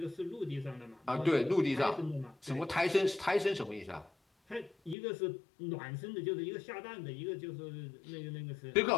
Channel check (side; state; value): right; drops out; at 5.0 s